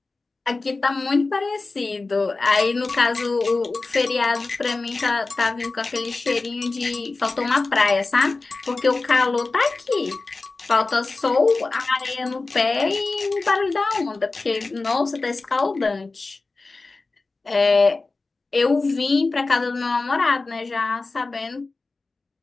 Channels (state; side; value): quieter; right; 3.6 dB